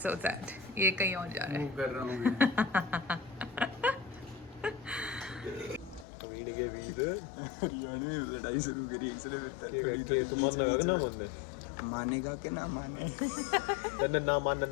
सैड, ये कहीं और जा रहा है। मूव कर रहा हूँ वीड के बीच हरियाणा में लड़ाई शुरू करी इसलिए के तू मान लगा कि ना मानने मानेगा कि ना माने। तन्ने ना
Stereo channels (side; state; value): right; drops out; at 6.1 s